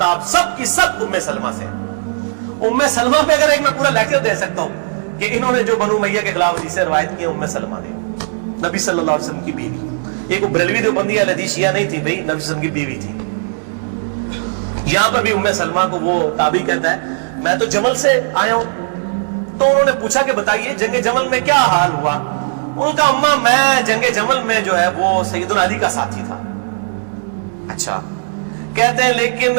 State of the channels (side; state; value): left; silent; 62 dB below the other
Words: سب کی سب ام سلمہ سے. ام سلمہ پہ اگر ایک میں پورا لیکچر دے سکتا ہوں کہ انہوں نے جو بنو امیہ کے خلاف حدیثیں روایت کی، ام سلمہ نے، نبی صلی اللہ علیہ وسلم کی بیوی. ایک وہ بریلوی دیوبندی اہل حدیث شیعہ نہیں تھی بھائی، نبی صلی اللہ علیہ وسلم کی بیوی تھی. یہاں پر بھی ام سلمہ کو وہ تابعی کہتا ہے میں تو جمل سے آیا ہوں. تو انہوں نے پوچھا کہ بتائیے جنگ جمل میں کیا حال ہوا. ان کا اماں میں جنگ جمل میں جو ہے وہ سیدنا علی کا ساتھی تھا. اچھا، کہتے ہیں لیکن